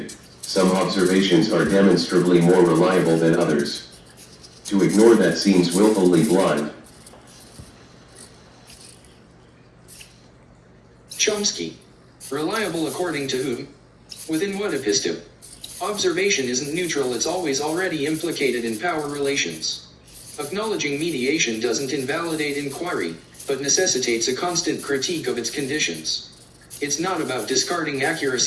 some observations are demonstrably more reliable than others. To ignore that seems willfully blind. Chomsky, reliable according to whom? Within what episteme? Observation isn't neutral, it's always already implicated in power relations. Acknowledging mediation doesn't invalidate inquiry, but necessitates a constant critique of its conditions. It's not about discarding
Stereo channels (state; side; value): identical; both; correlation 1.00